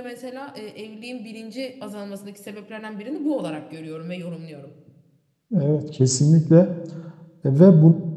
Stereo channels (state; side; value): identical; both; correlation 1.00